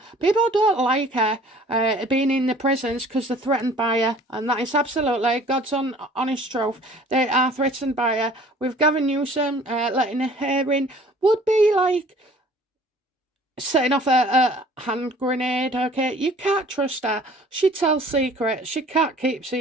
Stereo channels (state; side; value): normal; both; correlation 0.51